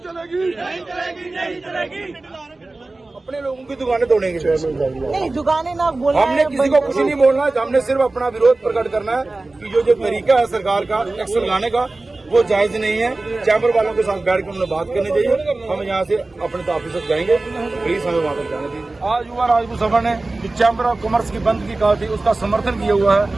चलेगी। अपने लोगों की दुकानें तोड़ेंगे? नहीं, दुकानें ना बोलना हमने किसी को कुछ नहीं बोलना है, हमने सिर्फ अपना विरोध प्रकट करना है कि जो तरीका है सरकार का टैक्स लगाने का वो जायज नहीं है। चैम्बर वालों के साथ बैठ कर उन्हें बात करनी चाहिए। हम यहाँ से अपने तो ऑफिस तक जाएंगे, प्लीज हमें वहाँ तक जाने दीजिए। आज युवा राजपूत सभा ने जो चैम्बर ऑफ कॉमर्स की बंद की कहा थी उसका समर्थन किया हुआ है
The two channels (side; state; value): left; quieter; 3.2 dB